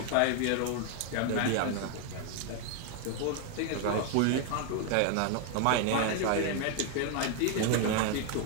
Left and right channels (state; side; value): different; both; correlation 0.00